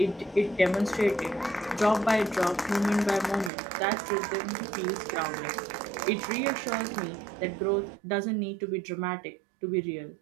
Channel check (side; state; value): left; drops out; at 3.5 s